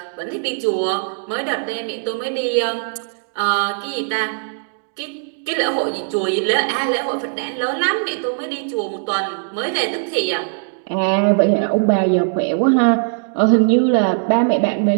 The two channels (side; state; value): left; silent; digital silence